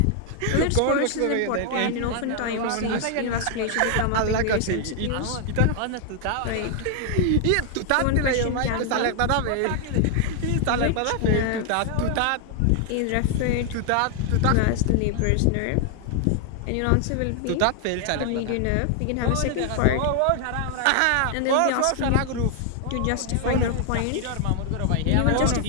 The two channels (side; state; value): both; different; correlation 0.00